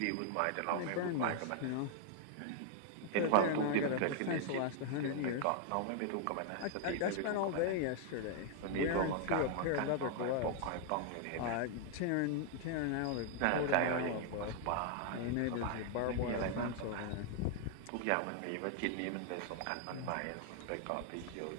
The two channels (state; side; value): different; both; correlation 0.00